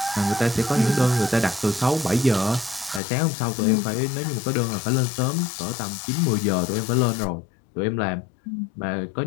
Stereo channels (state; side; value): drops out; right; at 3.0 s